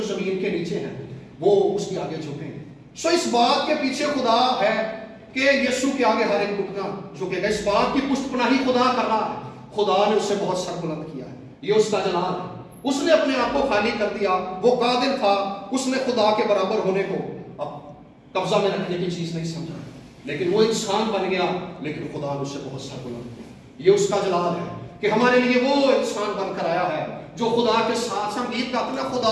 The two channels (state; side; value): identical; both; correlation 1.00